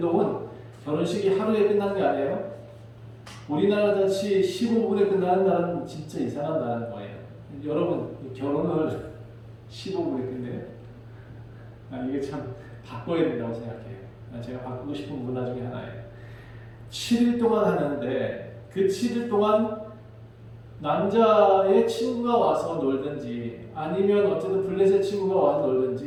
결혼식이 하루에 끝나는 게 아니에요. 우리나라 같이 15분에 끝나는 나라는 진짜 이상한 나라인 거예요. 여러분, 결혼을 15분에 끝내요? 이게 참 바꿔야 된다고 생각해요. 제가 바꾸고 싶은 문화 중에 하나예요. 7일 동안 하는데 그 7일 동안 남자의 친구가 와서 놀든지 아니면 어쨌든 블레셋 친구가 와서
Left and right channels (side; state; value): both; identical; correlation 1.00